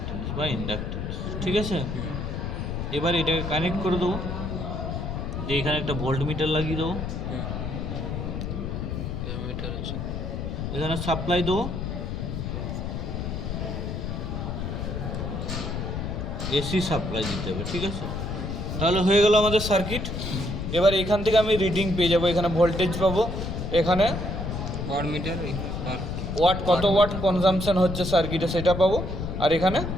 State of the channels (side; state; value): left; noise; rumble, 4 dB below the sound